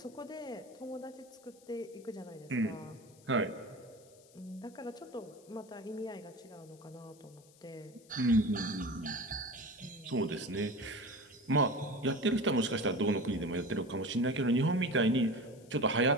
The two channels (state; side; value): noise; left; hiss, 26 dB below the sound